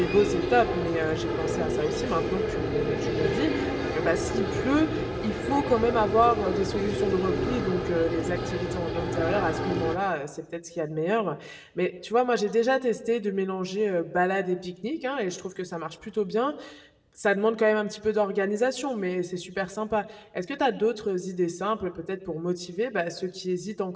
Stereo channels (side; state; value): both; identical; correlation 1.00